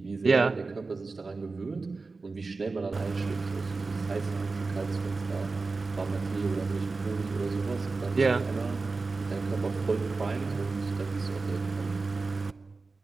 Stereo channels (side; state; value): left; quieter; 3.9 dB